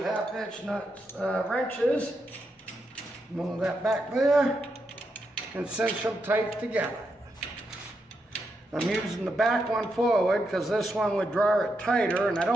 1/2 inch nuts, wrenches. Move that back there and cinch them tight together. I'm using the back one forward because this one would draw it tighter, and I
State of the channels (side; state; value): both; normal; correlation 0.83